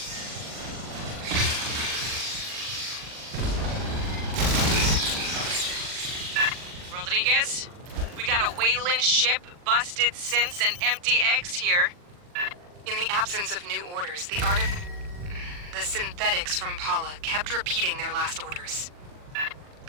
Rodriguez, we got a Wayland ship, busted synths, and empty eggs here. In the absence of new orders, the synthetics from Paula kept repeating their last orders.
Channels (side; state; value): left; late; 40 ms